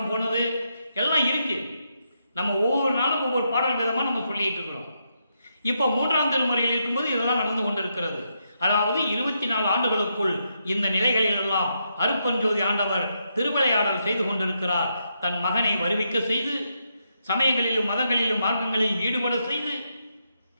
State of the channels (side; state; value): both; inverted; correlation -0.81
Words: போனது எல்லாம் இருக்கு. நம்ம ஒவ்வொரு நாளும் ஒவ்வொரு பாடல் விதமாக நம்ம சொல்லிட்டு இருக்கிறோம். இப்போ 3ஆம் திருமுறையில் இருக்கும்போது இதெல்லாம் நடந்து கொண்டிருக்கிறது. அதாவது 24 ஆண்டுகளுக்குள் இந்த நிலைகளில் எல்லாம் அருட்பெருஞ்சோதி ஆண்டவர் திருவிளையாடல் செய்து கொண்டிருக்கிறார். தன் மகனை வருவிக்க செய்து, சமயங்களிலும் மதங்களிலும் மார்க்கங்களிலும் ஈடுபட செய்து,